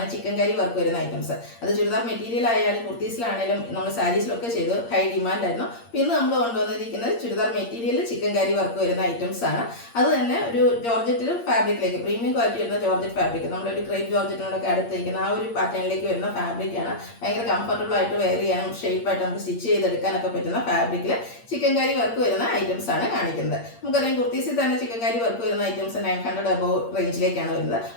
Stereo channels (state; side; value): late; right; 8.7 ms